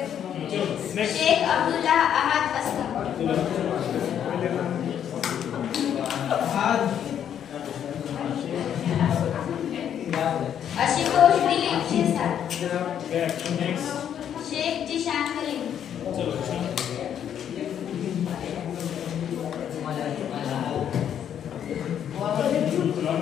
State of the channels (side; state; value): right; quieter; 9.3 dB